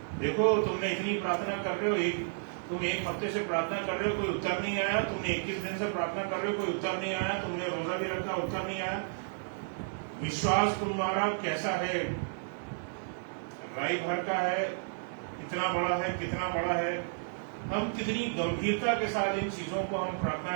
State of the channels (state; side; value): silent; left; digital silence